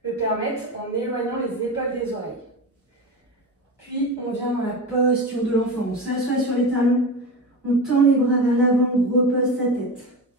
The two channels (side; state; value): both; normal; correlation 0.24